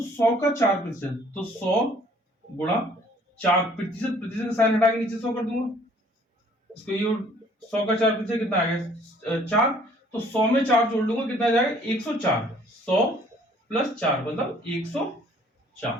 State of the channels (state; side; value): normal; both; correlation 0.58